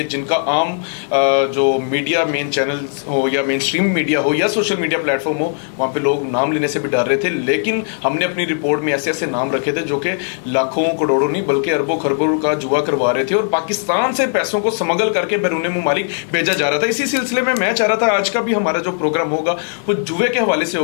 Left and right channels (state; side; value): silent; right; 55 dB below the other